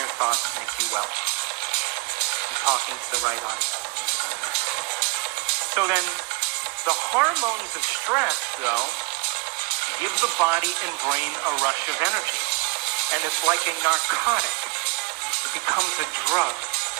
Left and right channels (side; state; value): left; quieter; 28.4 dB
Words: thoughts make you well? I'm talking to the right audience. So then, the hormones of stress, though, give the body and brain a rush of energy. And it's like a narcotic. It becomes a drug.